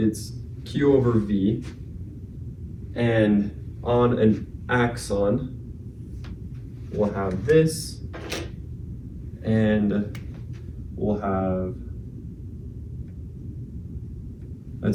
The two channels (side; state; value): both; identical; correlation 1.00